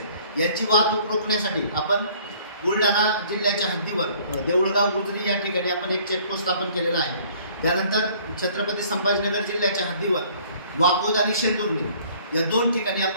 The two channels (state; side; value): inverted; both; correlation -0.56